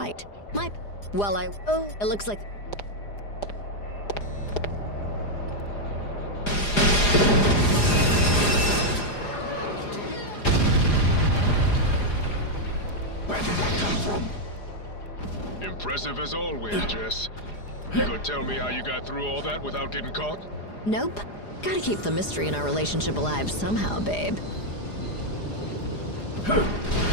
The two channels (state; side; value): late; right; 4.9 ms